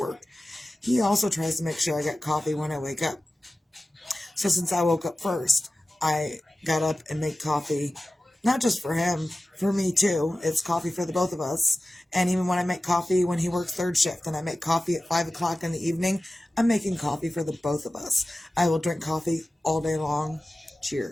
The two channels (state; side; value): normal; both; correlation 0.96